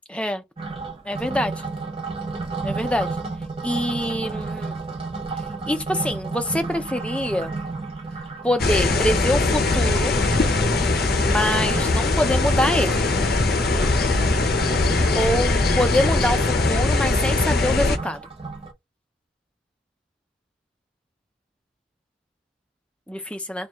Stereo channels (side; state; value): both; normal; correlation 0.71